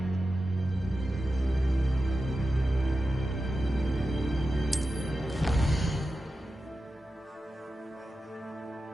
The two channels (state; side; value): normal; both; correlation 0.92